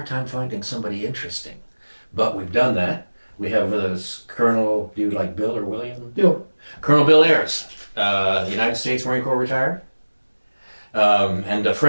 time finding somebody interesting. But we've done that. We have with us Colonel, do you like Bill or William? Bill. Colonel Bill Ayers, United States Marine Corps retired, and a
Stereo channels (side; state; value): both; inverted; correlation -1.00